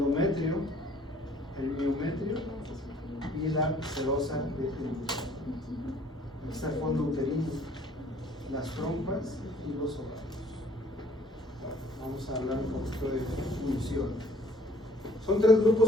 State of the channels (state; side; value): normal; both; correlation 0.58